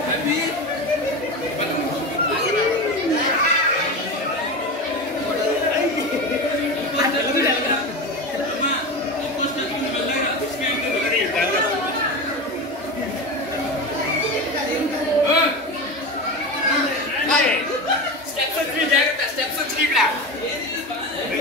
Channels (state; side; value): normal; both; correlation 0.24